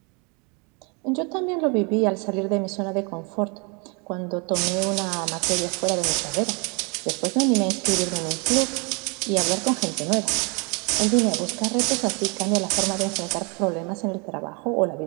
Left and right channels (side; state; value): left; quieter; 32.4 dB